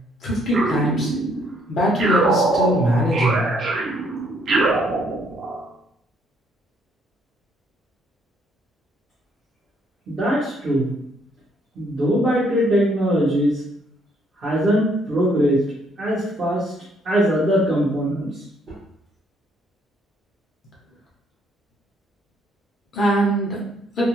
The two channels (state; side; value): normal; both; correlation 0.68